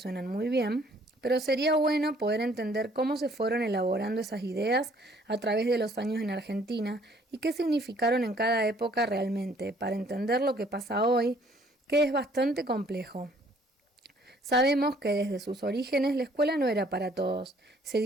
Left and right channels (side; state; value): both; normal; correlation 0.60